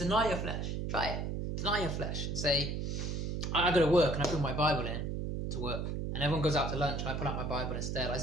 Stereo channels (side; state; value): right; noise; hum, 2 dB below the sound